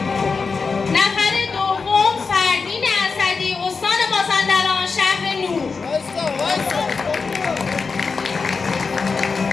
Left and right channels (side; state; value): right; quieter; 4.8 dB